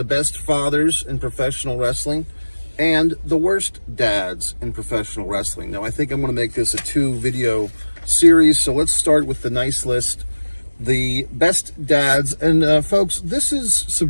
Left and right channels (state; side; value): inverted; both; correlation -1.00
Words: best fathers in professional wrestling, and the worst dads in professional wrestling. Now, I think I'm going to make this a 2-video series, so let's start with the nice list, the best dads. And folks, this is